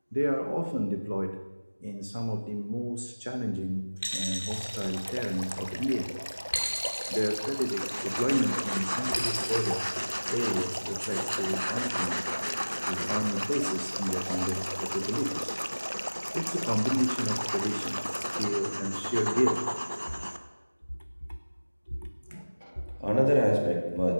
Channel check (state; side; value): inverted; both; correlation -1.00